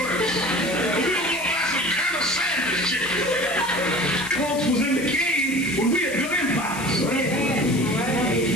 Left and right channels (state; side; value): noise; left; hiss, 12 dB below the sound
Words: We don't want to buy some kind of sandwich chicken. Folks was in the cave when we had built empires.